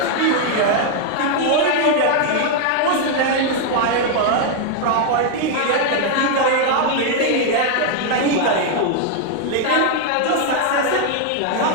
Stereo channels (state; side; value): different; both; correlation 0.00